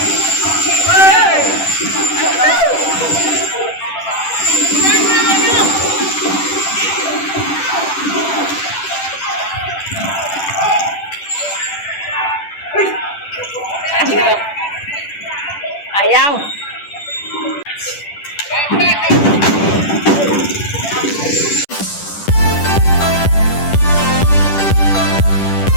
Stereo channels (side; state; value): right; late; 10 ms